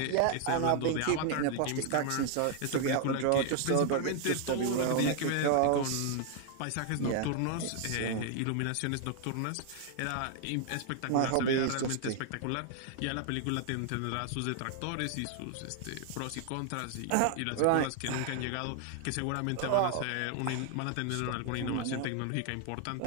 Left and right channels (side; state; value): both; different; correlation 0.00